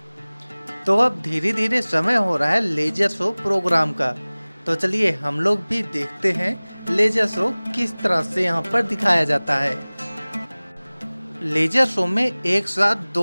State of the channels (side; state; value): both; inverted; correlation -1.00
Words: तो अब धीरे धीरे समय हो रहा है लेजर शो प्रोग्राम का। तो चलिए हम लोग भी देखते हैं लेजर शो किस तरह से यहाँ पर दिखाया जाता है। लेजर शो में एक साथ